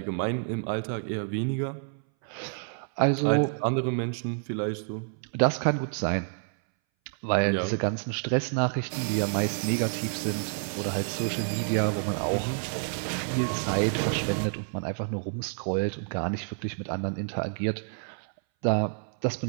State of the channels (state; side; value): silent; left; 59 dB below the other